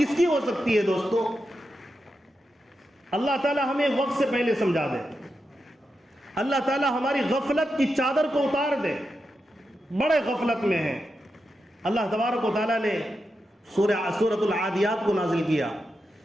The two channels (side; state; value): both; normal; correlation 0.88